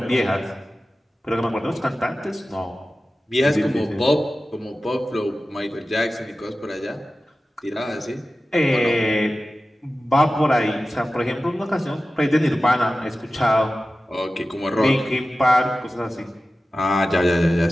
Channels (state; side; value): normal; both; correlation 0.95